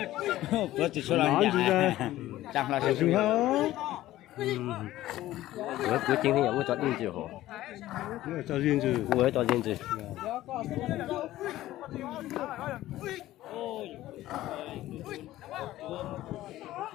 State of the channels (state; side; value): quieter; right; 15.1 dB